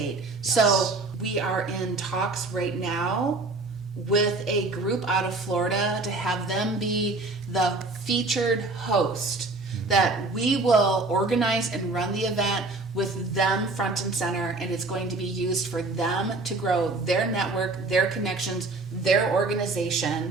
Yes. So we are in talks right now with a group out of Florida to have them be the featured host, that we will organize and run the event with them front and center, and it's going to be used for them to grow their network, their connections, their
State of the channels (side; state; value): left; quieter; 3.4 dB